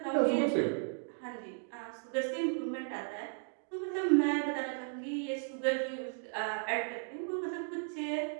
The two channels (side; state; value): left; silent; 54 dB below the other